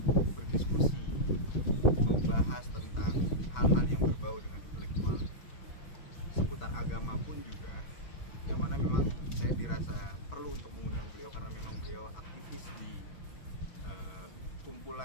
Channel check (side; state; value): right; late; 6.1 ms